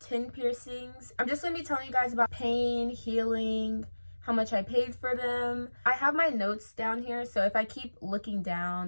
piercings. I'm just going to be telling you guys about pain, healing, how much I paid for them. I have my notes down here, so if I keep looking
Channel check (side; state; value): both; inverted; correlation -1.00